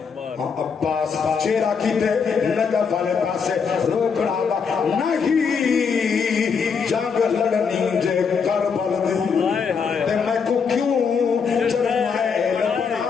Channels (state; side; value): quieter; right; 6.0 dB